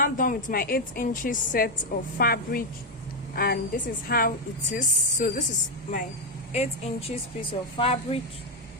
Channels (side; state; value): both; normal; correlation 0.05